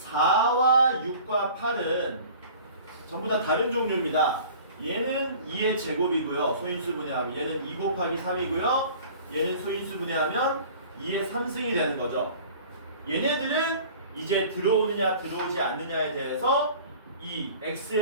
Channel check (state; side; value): inverted; both; correlation -0.45